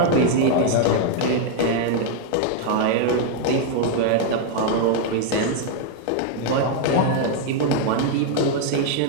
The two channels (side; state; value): both; different; correlation 0.00